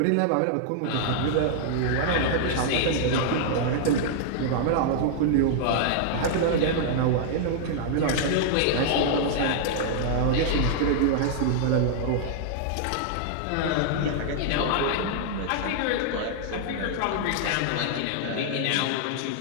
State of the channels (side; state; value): both; different; correlation -0.01